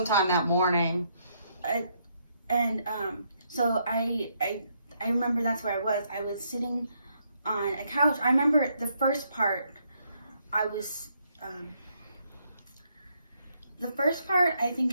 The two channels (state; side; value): inverted; both; correlation -0.74